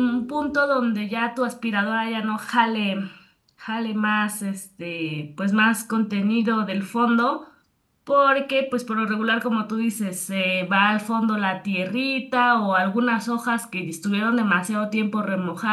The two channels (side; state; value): both; identical; correlation 1.00